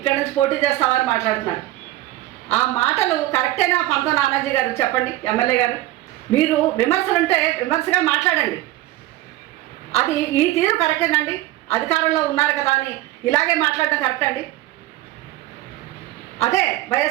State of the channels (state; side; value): quieter; left; 16.1 dB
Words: నుంచి పోటీ చేస్తావా అని మాట్లాడుతున్నారు. ఆ మాటలు కరెక్టేనా పంతం నానాజీ గారు? చెప్పండి ఎమ్మెల్యే గారు. మీరు విమర్శలుంటే విమర్శగా మాట్లాడండి. అది ఈ తీరు కరెక్టేనండి? అధికారంలో ఉన్నారు కదా అని ఇలాగే మాట్లాడటం కరెక్ట్ అండి? అదే